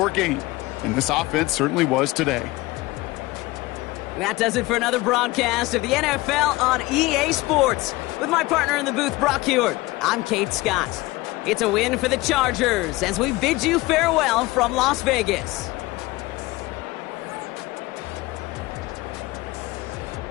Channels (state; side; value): quieter; right; 20.4 dB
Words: game. And this offense certainly was today. That does it for another broadcast of the NFL on EA Sports. With my partner in the booth, Brock Huard, I'm Kate Scott. It's a win for the Chargers as we bid you farewell from Las Vegas.